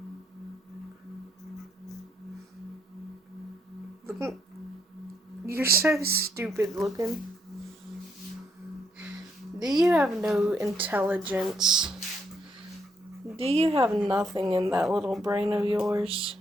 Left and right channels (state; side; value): normal; both; correlation 0.74